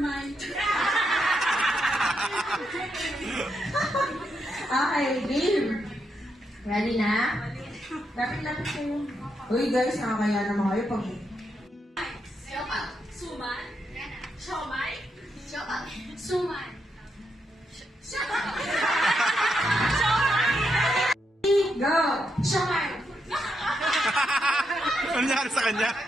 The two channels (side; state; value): both; normal; correlation 0.81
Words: mind. Okay, game. Ready na? Lapit-lapit kayo. Uy guys, nakakaya naman kayo pag... Siopaw. Suman. Siomay. Siopaw. Suman. Siopaw. Go! Siomay. Ano nangyari sa kanya?